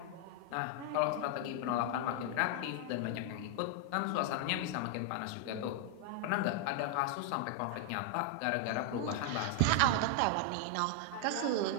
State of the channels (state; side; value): different; both; correlation 0.00